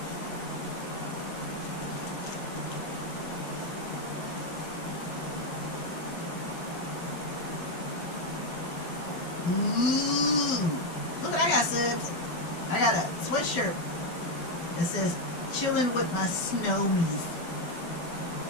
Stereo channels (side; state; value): right; late; 12 ms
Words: Ooh, look what I got, subs. I got a sweatshirt that says "Chilling with my snowmies."